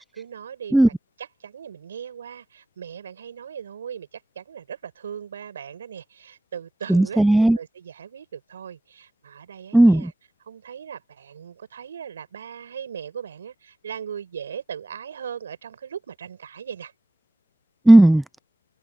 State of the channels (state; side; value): normal; both; correlation 0.94